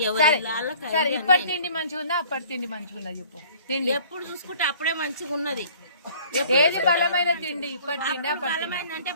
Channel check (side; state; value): both; inverted; correlation -0.52